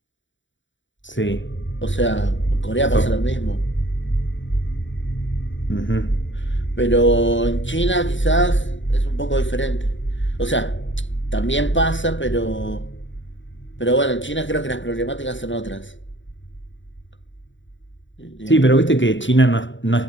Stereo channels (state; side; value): late; right; 0.55 ms